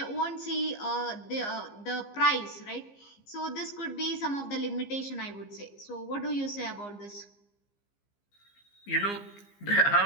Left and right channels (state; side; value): late; right; 15 ms